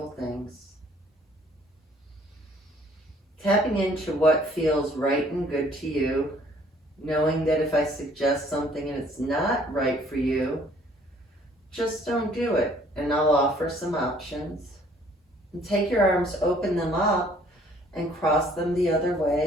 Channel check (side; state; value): both; normal; correlation 0.59